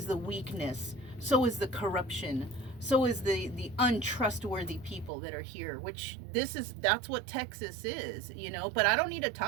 the weakness. So is the corruption. So is the untrustworthy people that are here, which that's what Texas is, But I don't need to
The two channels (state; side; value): drops out; left; at 5.1 s